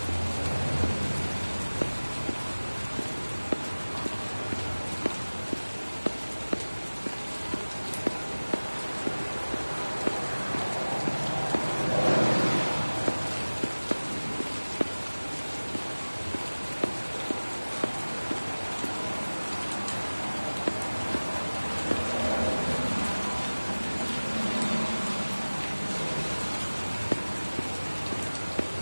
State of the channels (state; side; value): inverted; both; correlation -1.00